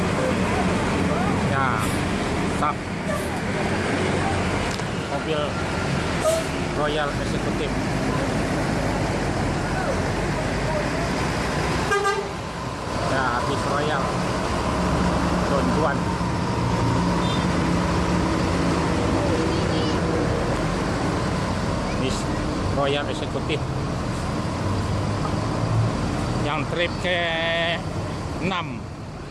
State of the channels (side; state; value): both; identical; correlation 1.00